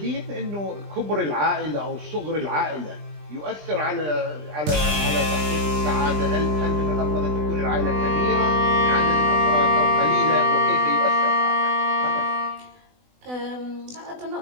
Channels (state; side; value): late; left; 20 ms